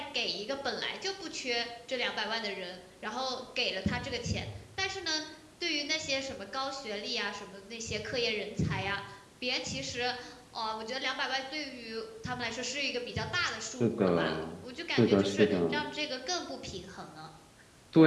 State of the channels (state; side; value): identical; both; correlation 1.00